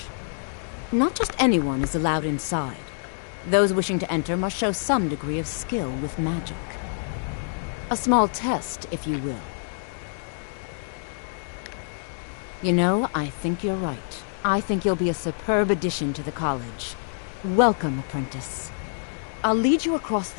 Not just anyone is allowed inside. Those wishing to enter must show some degree of skill with magic. A small test, if you will. You know, I think you're right. I think you'll be a superb addition to the college. Welcome, apprentice. I'll lead you across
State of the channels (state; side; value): silent; right; digital silence